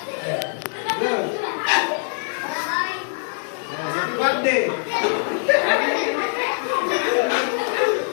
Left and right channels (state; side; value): silent; right; digital silence